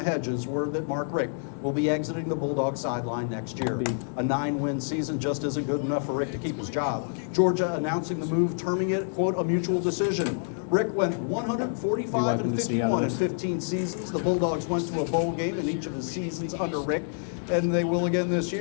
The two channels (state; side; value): silent; right; 60 dB below the other